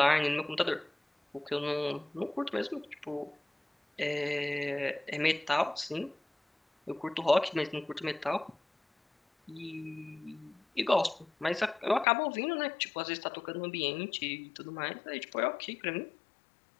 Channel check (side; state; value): right; drops out; at 12.1 s